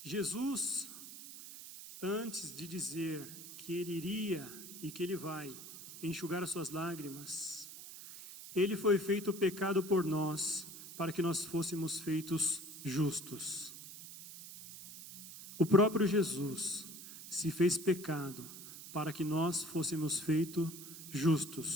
Jesus, antes de dizer que ele iria e que ele vai enxugar as suas lágrimas, ele foi feito pecado por nós, para que nós fôssemos feitos justos. O próprio Jesus se fez pecado para que nós fôssemos feitos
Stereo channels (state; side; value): noise; right; hiss, 13 dB below the sound